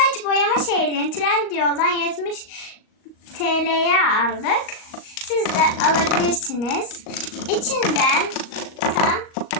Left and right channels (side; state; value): right; late; 38 ms